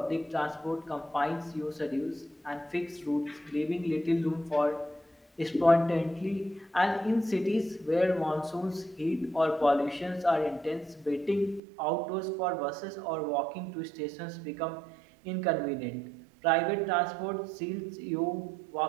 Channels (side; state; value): left; drops out; at 11.6 s